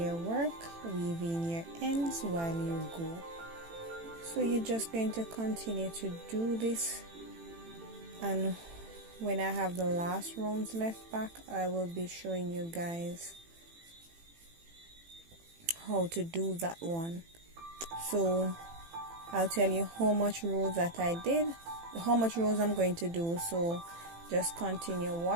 work, weave in your ends while you go. So you're just going to continue to do this, and when I have the last rounds left back, I will be showing you guys how to do that one. So I'll tell you how much rows that I did, how much rows I'm going to do. So just continue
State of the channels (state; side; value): late; left; 18 ms